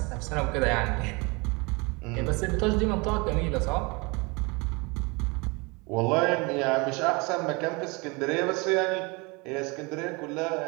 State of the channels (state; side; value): quieter; left; 28.0 dB